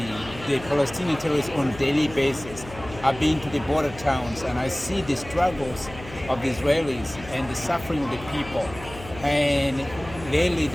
the Palestinian terrorists on a daily basis. I've been to the border towns and I see the struggles of the Israelis and the suffering of the people. And lately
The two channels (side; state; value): left; noise; hum, 15 dB below the sound